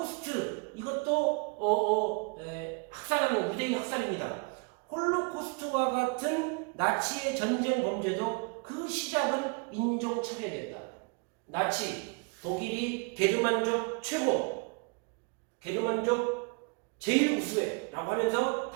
이것도 학살하는 유대인 학살입니다. 홀로코스트와 같은 나치의 전쟁 범죄도 그 시작은 인종차별이었다. 나치, 독일이 게르만족 최고, 게르만족 제일 우수해 라고 하면서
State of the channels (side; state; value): left; quieter; 33.9 dB